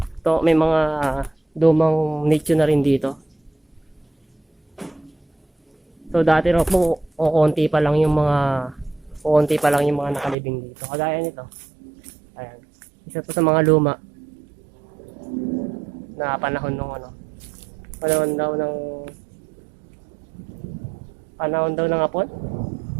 to may mga lumang nicho na rin dito. So dati raw po kukunti pa lang yung mga nakalibing dito. Kagaya nito. Ayan. Isa to sa mga luma na panahon ng hapon.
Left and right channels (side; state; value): left; drops out; at 10.4 s